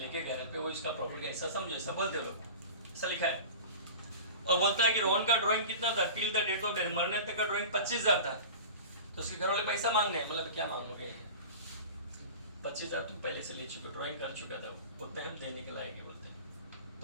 गया है वो इसका प्रॉफिट का हिस्सा समझे, ऐसा बोलते हो, ऐसा लिखा है। और बोलता है कि रोहन का ड्राइंग कितना था? Till the date of death, मरने तक का ड्राइंग 25,000 था। तो उसके घर वाले पैसा मांग रहे हैं, मतलब क्या मांगोगे? 25,000 तुम पहले से ले चुके, ड्राइंग कर चुका था, उतने हम देने के लायक है बोलते हैं।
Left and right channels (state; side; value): inverted; both; correlation -0.35